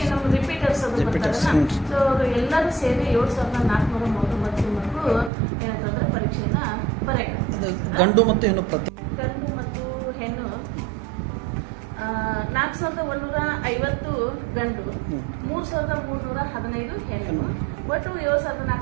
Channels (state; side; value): drops out; left; at 5.3 s